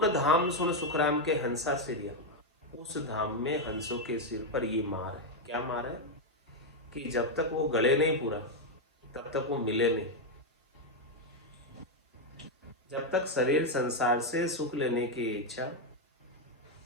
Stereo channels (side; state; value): both; normal; correlation 0.03